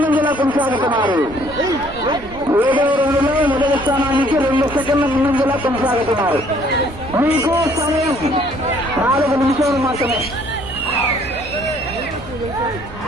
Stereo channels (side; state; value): right; noise; rumble, 17 dB below the sound